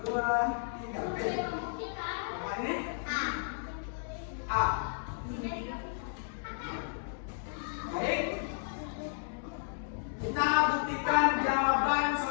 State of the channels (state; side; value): silent; right; digital silence